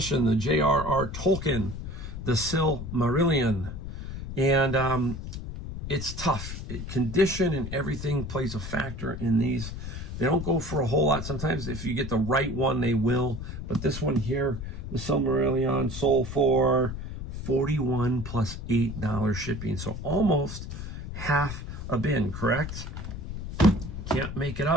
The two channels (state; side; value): noise; left; rumble, 7 dB below the sound